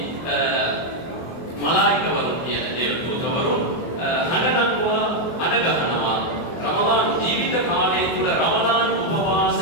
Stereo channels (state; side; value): late; right; 24 ms